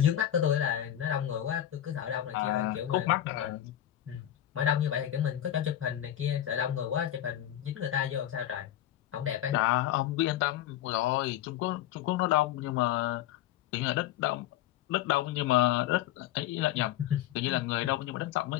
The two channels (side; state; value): right; quieter; 12.1 dB